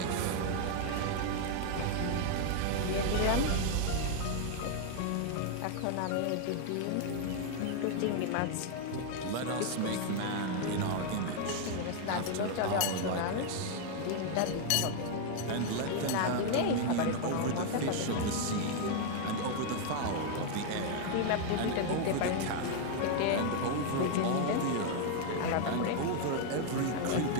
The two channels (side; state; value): both; different; correlation 0.00